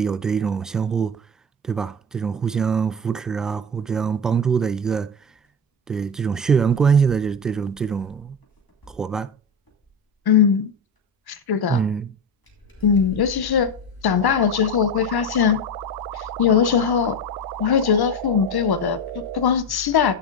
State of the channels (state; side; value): normal; both; correlation 0.20